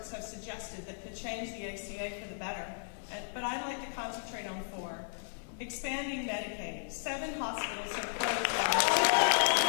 have suggested that could change the ACA for the better, but I'd like to concentrate on 4. Expanding Medicaid. 7 hospitals have closed last year.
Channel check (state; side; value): silent; right; digital silence